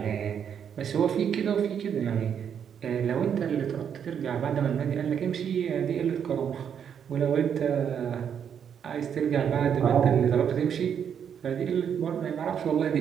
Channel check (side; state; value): left; quieter; 8.1 dB